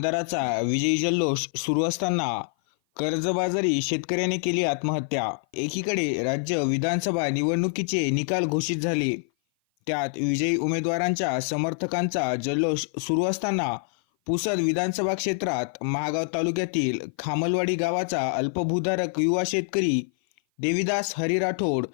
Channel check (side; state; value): right; silent; 56 dB below the other